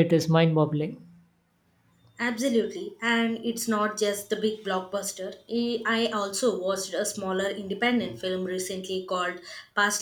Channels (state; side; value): identical; both; correlation 1.00